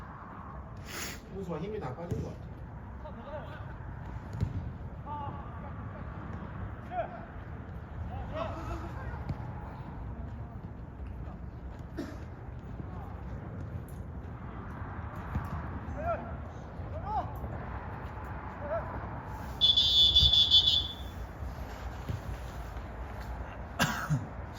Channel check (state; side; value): identical; both; correlation 1.00